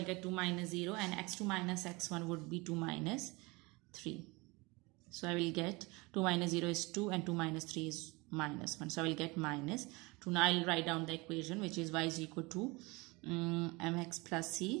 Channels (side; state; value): left; quieter; 25.1 dB